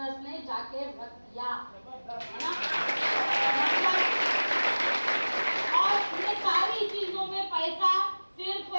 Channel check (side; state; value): both; inverted; correlation -1.00